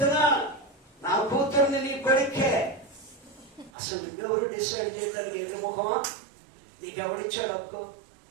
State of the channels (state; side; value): drops out; left; at 3.7 s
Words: నా కూతుర్ని నీ కొడుకే. అసలు నువ్వెవరు డిసైడ్ చేయడానికి? ఏమి ముఖమా? నీకెవడిచ్చాడు హక్కు?